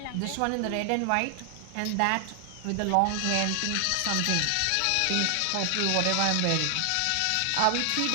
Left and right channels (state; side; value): different; both; correlation 0.00